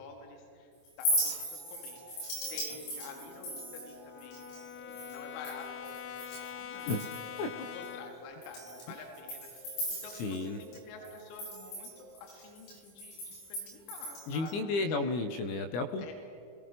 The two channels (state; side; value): late; right; 25 ms